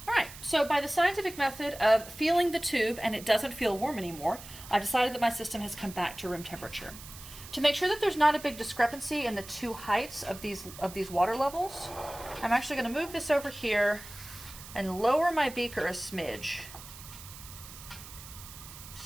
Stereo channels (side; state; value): right; noise; hiss, 15 dB below the sound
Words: All right, so by the scientific method of feeling the tube and it doesn't feel warm anymore, I've decided that my system has come back to room temperature. To make sure that there's not a big discrepancy in the two heights of these water levels, I'm actually going to move this over here and lower my beaker a smidge